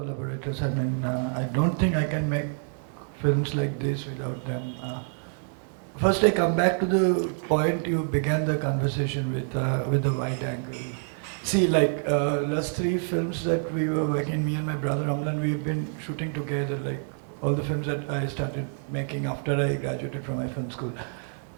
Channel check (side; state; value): left; silent; 57 dB below the other